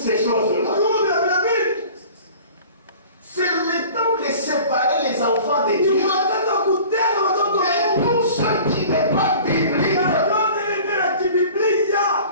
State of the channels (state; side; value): inverted; both; correlation -0.44